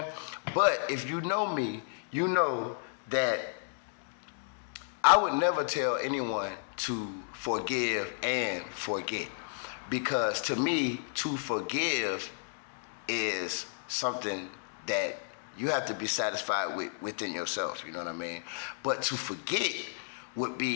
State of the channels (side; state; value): right; silent; digital silence